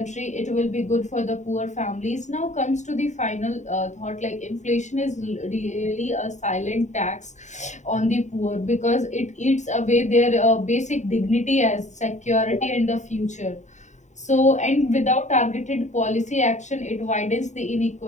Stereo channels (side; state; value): right; late; 0.34 ms